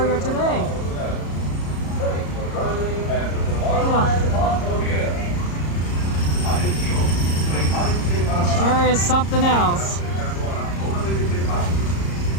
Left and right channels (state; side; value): late; right; 34 ms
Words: today. It sure is something else.